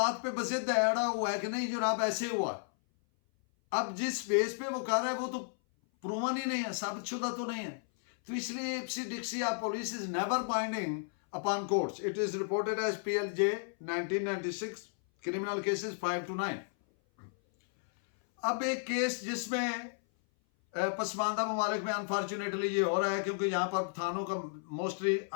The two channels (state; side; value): silent; right; 56 dB below the other